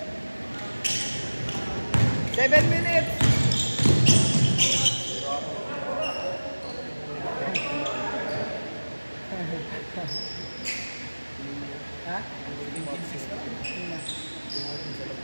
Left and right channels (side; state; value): both; inverted; correlation -1.00